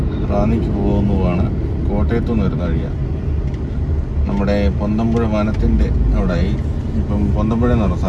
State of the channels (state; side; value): identical; both; correlation 1.00